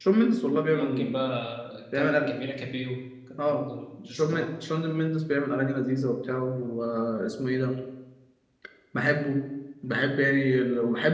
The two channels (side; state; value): both; identical; correlation 1.00